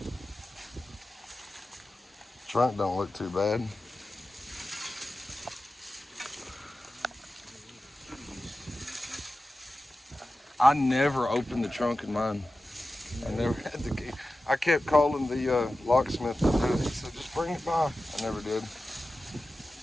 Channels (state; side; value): normal; both; correlation 0.94